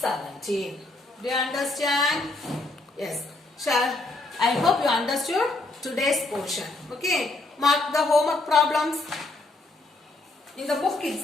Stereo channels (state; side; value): quieter; right; 3.1 dB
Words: Do you understand? Yes. I hope you understood today's portion. Okay. Mark the homework problems. In the book